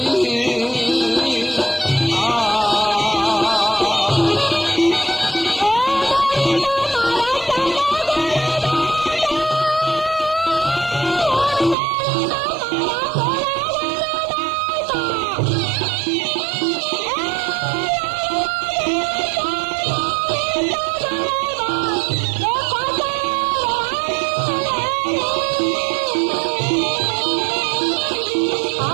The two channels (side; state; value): left; drops out; at 11.8 s